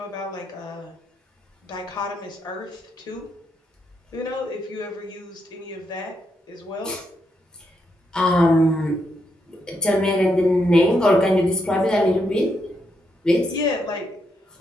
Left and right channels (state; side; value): normal; both; correlation 0.80